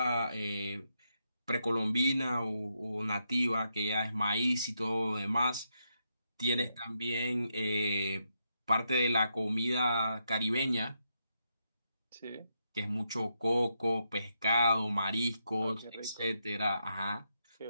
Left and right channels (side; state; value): both; inverted; correlation -0.82